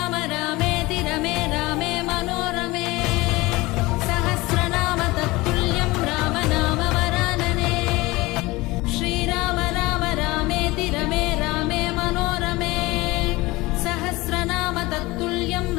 रामेति रमे रामे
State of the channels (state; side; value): quieter; right; 21.2 dB